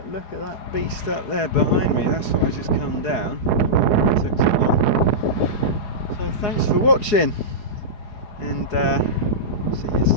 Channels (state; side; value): late; right; 4.8 ms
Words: look at that beast up there behind me. That's what I just come down. It took so long. So thanks for watching, and see you